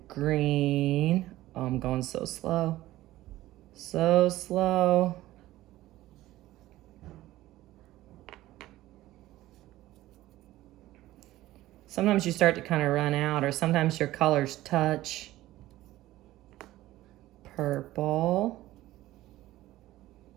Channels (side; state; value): left; quieter; 16.0 dB